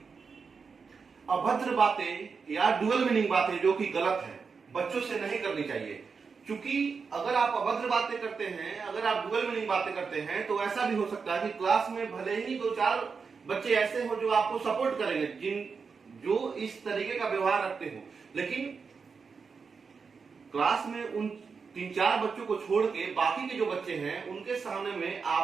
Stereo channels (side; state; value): left; quieter; 5.3 dB